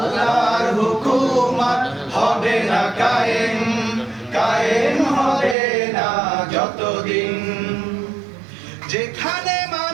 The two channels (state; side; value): drops out; left; at 5.6 s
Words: হুকুমত হবে না কায়েম, কায়েম হবে না যতদিন। যেখানে